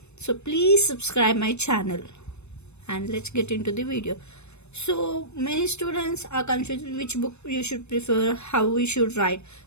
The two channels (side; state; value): right; late; 0.81 ms